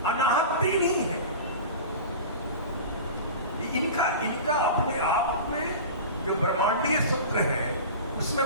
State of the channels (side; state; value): both; inverted; correlation -0.33